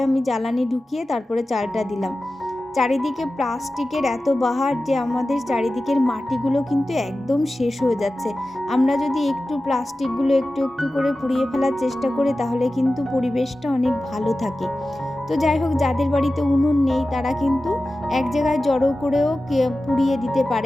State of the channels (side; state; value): both; normal; correlation 0.95